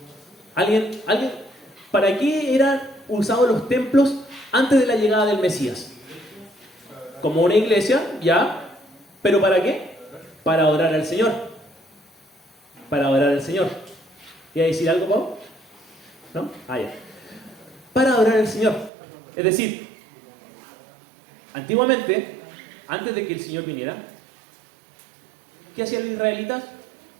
¿Alguien? ¿Para qué eran usados los templos antes de la llegada del Mesías? Como una iglesia, ya, pero ¿para qué? para adorar al Señor. Para adorar al Señor. ¿Iba a decir algo, Pau? ¿No? Ah, ya. Para adorar al Señor. Es decir, antiguamente, antes de que el Señor viniera, ¿qué hacían los israelitas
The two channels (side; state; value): left; drops out; at 18.9 s